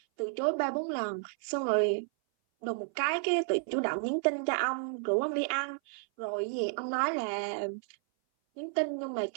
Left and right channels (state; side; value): silent; left; 57 dB below the other